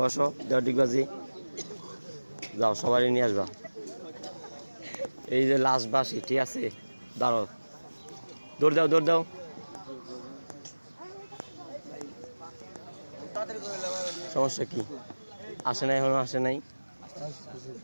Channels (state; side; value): inverted; both; correlation -1.00